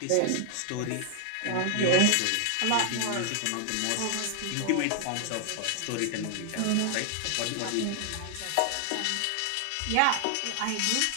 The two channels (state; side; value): different; both; correlation 0.00